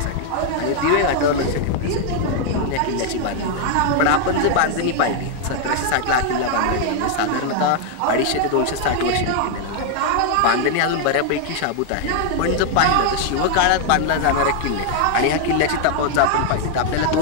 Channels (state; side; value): different; both; correlation 0.00